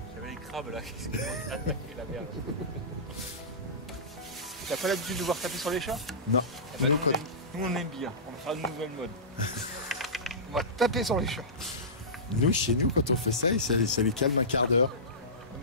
J'avais les crabes là qui se commencent à attaquer la mer. T'as pas l'habitude de voir taper sur les chats? Non. Eh ben, Nous, nous, on aime bien, on fera une nouvelle mode. On va taper sur les chats. nous, chez nous, quand on fait ça, ça les calme un quart d'heure. Non,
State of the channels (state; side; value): normal; both; correlation -0.19